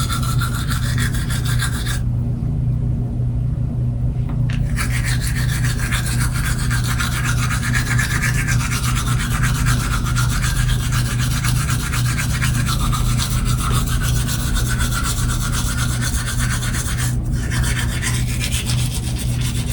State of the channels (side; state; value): both; identical; correlation 1.00